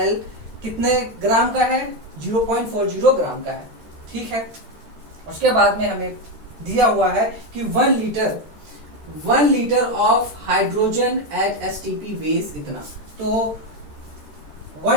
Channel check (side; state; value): left; late; 13 ms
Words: कितने ग्राम का है, 0.40 ग्राम का है, ठीक है। उसके बाद में हमें दिया हुआ है कि 1 litre of hydrogen at STP weighs इतना। तो